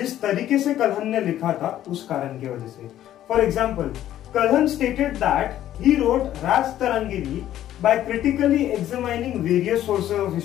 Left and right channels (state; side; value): quieter; right; 12.3 dB